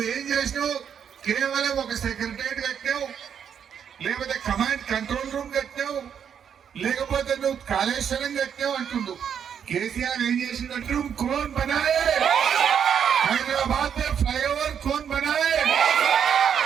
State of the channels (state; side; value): quieter; left; 8.0 dB